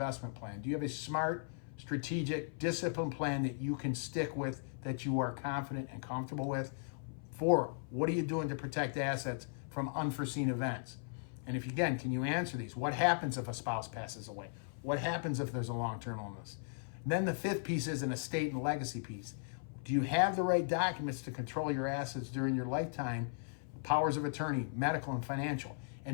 plan? Do you have a smart, strategic, disciplined plan that you can stick with, that you are confident and comfortable with? 4, what are you doing to protect assets from unforeseen events? And can you answer these? What happens if a spouse passes away? What happens if there's a long-term illness? And then the 5th piece is an estate and legacy piece. Do you have the right documents to control your assets during your lifetime? Powers of attorney, medical and financial.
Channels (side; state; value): right; silent; 53 dB below the other